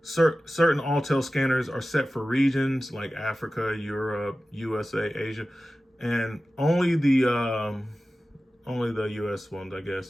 certain Autel scanners are set for regions like Africa, Europe, USA, Asia, and only the US ones, I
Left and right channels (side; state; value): both; normal; correlation 0.95